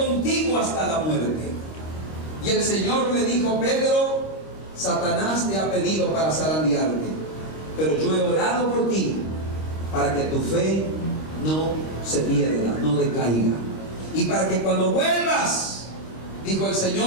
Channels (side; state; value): right; late; 26 ms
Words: hasta la muerte. Y el Señor le dijo, Pedro, Satanás te ha pedido para zarandearte, pero yo he orado por ti para que tu fe no se pierda, no decaiga. Y para que cuando vuelvas, dijo el